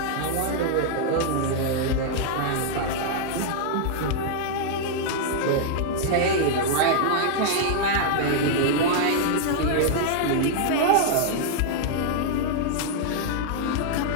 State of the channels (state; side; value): different; both; correlation -0.01